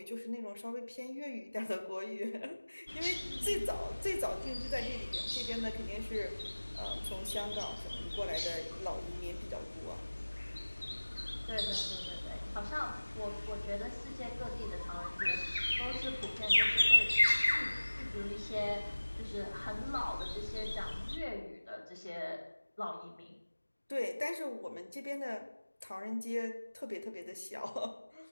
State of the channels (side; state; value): both; inverted; correlation -1.00